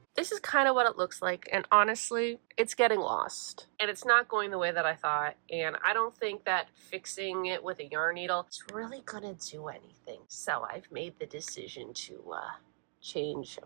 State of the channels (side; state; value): left; silent; digital silence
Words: This is kind of what it looks like, and honestly, it's getting lost. And it's not going the way that I thought, and I don't think that fixing it with a yarn needle is really gonna do anything. So I've made the decision to change up